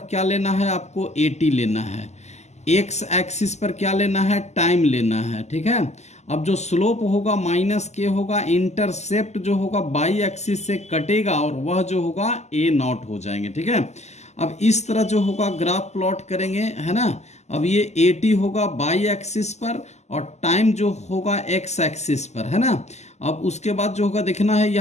क्या लेना है आपको, एटी लेना है। एक्स एक्सिस पर क्या लेना है, टाइम लेना है, ठीक है। अब जो स्लोप होगा माइनस के होगा, इंटरसेप्ट जो होगा बाई एक्सिस से कटेगा और वह जो होगा ए नॉट हो जाएंगे, ठीक है। अब इस तरह जो होगा ग्राफ प्लॉट करेंगे, है ना। अब ये एटी होगा बाई एक्सिस पर और टाइम जो होगा एक्स एक्सिस पर, है ना। अब उसके बाद जो होगा देखना है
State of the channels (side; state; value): right; late; 0.33 ms